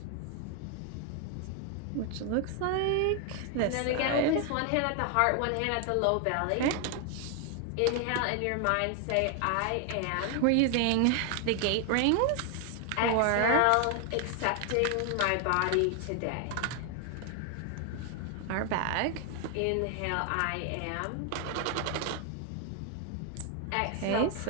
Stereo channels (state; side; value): different; both; correlation 0.00